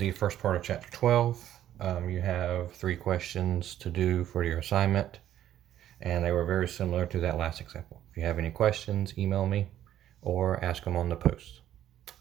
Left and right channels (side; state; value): left; quieter; 11.8 dB